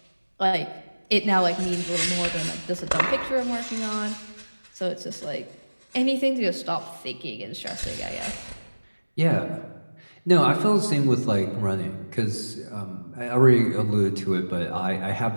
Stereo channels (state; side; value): inverted; both; correlation -1.00